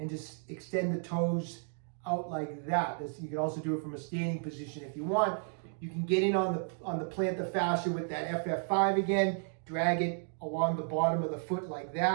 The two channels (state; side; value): silent; left; 55 dB below the other